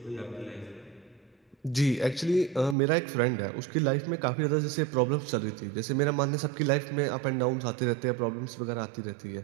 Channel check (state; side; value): drops out; left; at 2.8 s